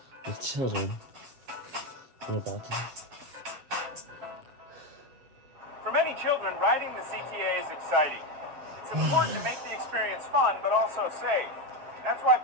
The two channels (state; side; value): late; left; 7.5 ms